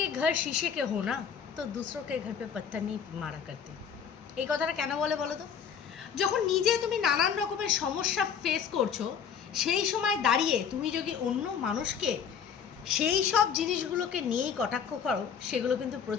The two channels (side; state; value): right; quieter; 7.4 dB